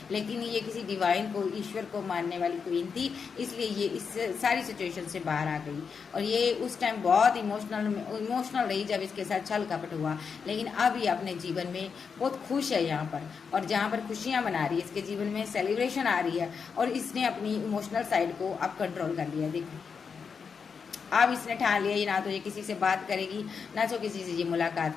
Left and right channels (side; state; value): right; quieter; 5.9 dB